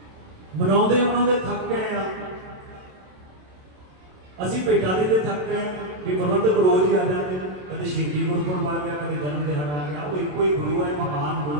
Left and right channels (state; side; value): late; left; 27 ms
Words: ਮਨਾਉਂਦੇ ਥੱਕ ਗਏ ਆ। ਅਸੀਂ ਭੇਟਾਂ ਦੇ ਥੱਕ ਗਏ ਵੀ ਪ੍ਰਬੰਧਕ ਰੋਜ਼ ਹੀ ਆ ਜਾਂਦੇ ਨੇ, ਕਦੇ ਸ਼ਹੀਦੀ ਗੁਰਪੁਰਬ ਆ ਗਿਆ, ਕਦੇ ਜਨਮ ਦਿਹਾੜਾ ਆ ਗਿਆ। ਉਹ ਇੱਕੋ ਹੀ ਗੁਰੂ ਹੈ, ਮਹਾਨ